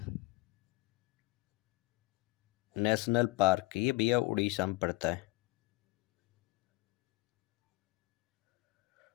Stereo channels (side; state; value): right; quieter; 21.7 dB